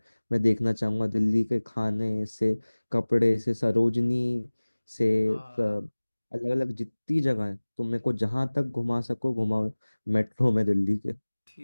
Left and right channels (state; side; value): inverted; both; correlation -1.00